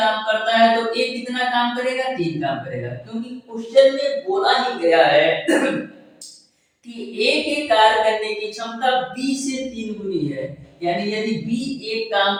करता है तो ए कितना काम करेगा, 3 काम करेगा, क्योंकि क्वेश्चन में बोला ही गया है कि ए के कार्य करने की क्षमता बी से 3 गुनी है। यानी यदि बी एक काम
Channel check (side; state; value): both; identical; correlation 1.00